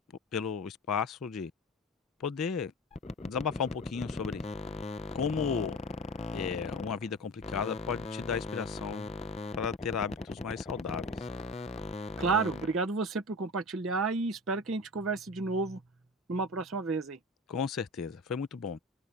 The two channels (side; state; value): both; normal; correlation 0.31